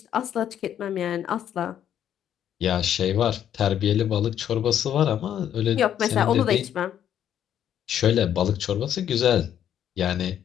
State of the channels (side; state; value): right; quieter; 10.0 dB